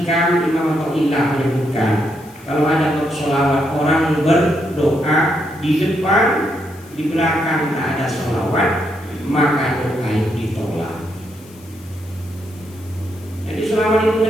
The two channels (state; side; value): noise; left; hiss, 24 dB below the sound